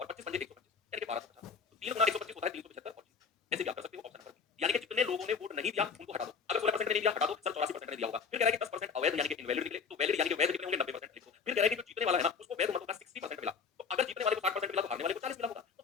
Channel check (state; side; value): quieter; right; 5.6 dB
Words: 25 पंजे 125, यानी कि 1250। तो 3 गुना 125 होता है 375 और 30। ऐसे भी आप कर सकते हो ऑप्शन नंबर बी। यानी कि जितने लोगों ने वोट नहीं दिया उनको हटा दो। अगर 16% ने नहीं दिया हटा दो, सर 84% ने दिया होगा। फिर कह रहा है कि 10% अवैध यानी कि इनवैलिड निकले, तो वैलिड यानी कि वैध कितने होंगे? 90% लिख दो। फिर कह रहा है कि जो जीतने वाला है ना उसको वैध मतों का 60% मिला। तो अगर जीतने वाले को 60% मिला तो हारने वाले को 40 मिला होगा। तो